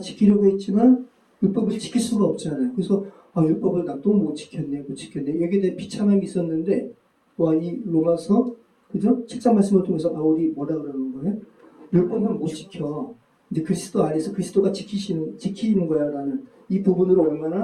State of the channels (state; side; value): identical; both; correlation 1.00